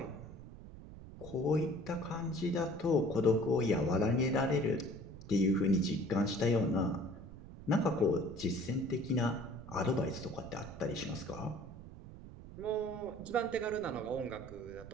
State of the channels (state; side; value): noise; right; rumble, 15 dB below the sound